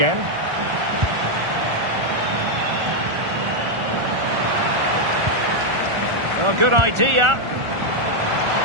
Oh, good idea.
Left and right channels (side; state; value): left; late; 1.4 ms